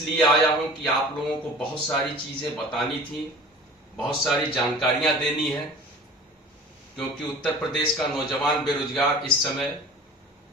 आया हूं कि आप लोगों को बहुत सारी चीजें बतानी थी, बहुत सारी जानकारियां देनी है, क्योंकि उत्तर प्रदेश का नौजवान बेरोजगार इस समय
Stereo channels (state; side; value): normal; both; correlation 0.42